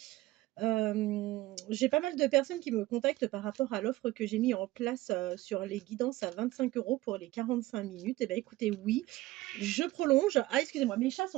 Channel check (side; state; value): left; quieter; 18.0 dB